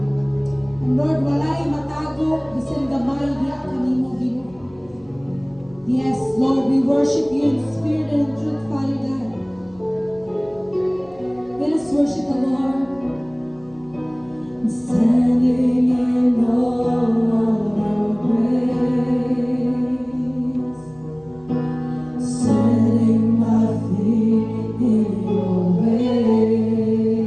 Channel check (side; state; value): left; noise; hum, 26 dB below the sound